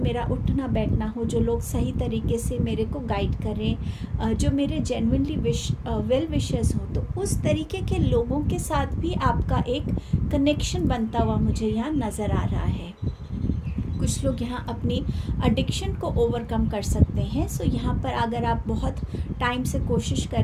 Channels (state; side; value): identical; both; correlation 1.00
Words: मेरा उठना बैठना हो, जो लोग सही तरीके से मेरे को गाइड करें, जो मेरे जेन्युइनली वेल विशर्स हों, तो उस तरीके के लोगों के साथ भी आपका एक कनेक्शन बनता हुआ मुझे यहाँ नज़र आ रहा है। कुछ लोग यहाँ अपनी एडिक्शन को ओवरकम कर सकते हैं। सो यहाँ पर अगर आप बहुत टाइम से कोशिश कर